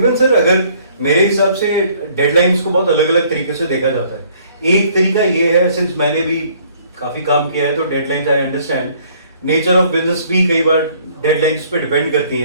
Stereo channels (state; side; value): inverted; both; correlation -0.60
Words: सर, अगर मेरे हिसाब से डेडलाइंस को बहुत अलग अलग तरीके से देखा जाता है। एक तरीका ये है, सिंस मैंने भी काफी काम किया है तो deadlines I understand, nature of business भी कई बार डेडलाइंस पे डिपेंड करती